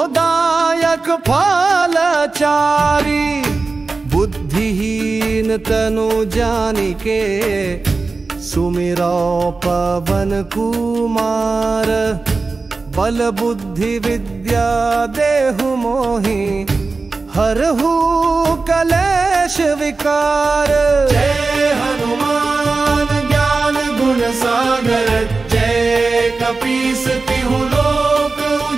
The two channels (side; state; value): left; quieter; 3.9 dB